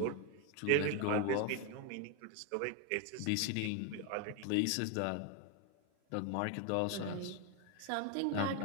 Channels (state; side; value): different; both; correlation 0.01